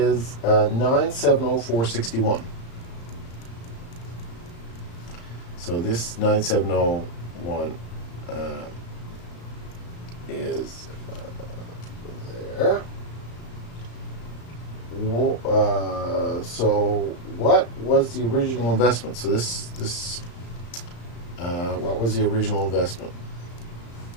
9,704.61. So this 9701 is there. So what was the original investment? So what was the original investment?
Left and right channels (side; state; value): right; late; 34 ms